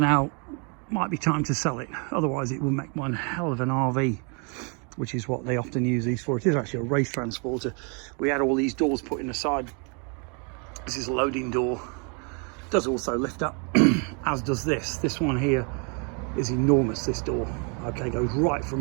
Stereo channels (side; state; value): left; quieter; 36.1 dB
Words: might be time to sell it. Otherwise it will make one hell of an RV, which is what they often use these for. It is actually a race transporter. We had all these doors put in the side. This is a loading door. It does also lift up, as does this. This one here is enormous, this door. Okay, goes right